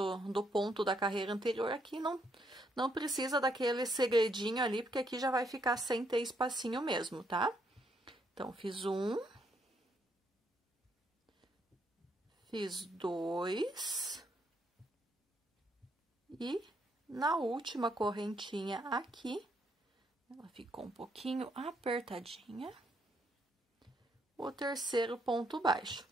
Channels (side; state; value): both; normal; correlation 0.74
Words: ponto da carreira anterior, aqui não precisa daquele segredinho ali, porque aqui já vai ficar sem ter espacinho mesmo, tá? Então, fiz 1. Fiz 2. E na última correntinha aqui, ela ficou um pouquinho apertadinha, o terceiro ponto baixo.